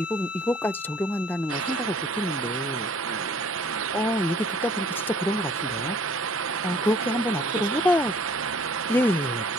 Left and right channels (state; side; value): normal; both; correlation 0.56